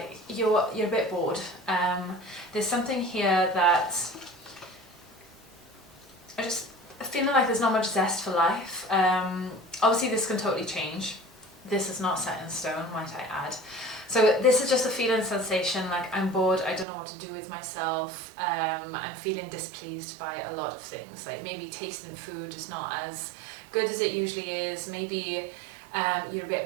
you're a bit bored. There's something here that I just feeling like there's not much zest for life. Obviously this can totally change. This is not set in stone, might I add. So this is just a feeling sensation, like I'm bored, I don't know what to do with myself. I'm feeling displeased by a lot of things, like maybe tasting food is not as good as it usually is. Maybe you're a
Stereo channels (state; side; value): drops out; left; at 16.9 s